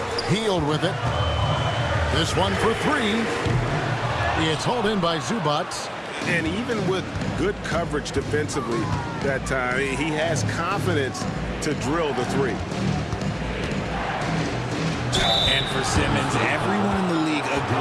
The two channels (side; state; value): both; identical; correlation 1.00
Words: Hield with it. This one for 3. It's hauled in by Zubac. And even with good coverage defensively that time, he has confidence to drill the 3. And for Simmons, everyone in the league